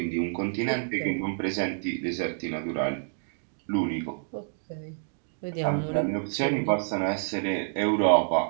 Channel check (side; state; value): left; silent; digital silence